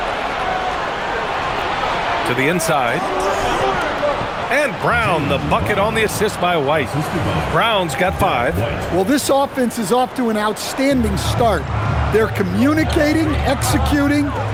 To the inside. And Brown, the bucket on the assist by White. Brown's got 5. Well, this offense is off to an outstanding start. They're communicating, executing,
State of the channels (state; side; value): identical; both; correlation 1.00